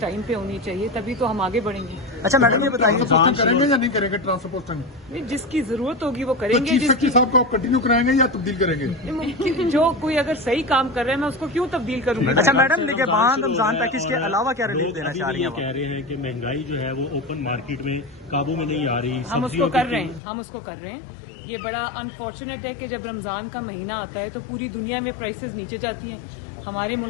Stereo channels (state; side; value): drops out; right; at 20.2 s